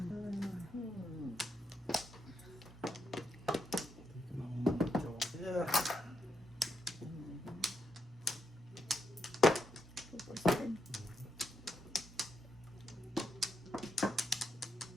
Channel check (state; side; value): normal; both; correlation 0.81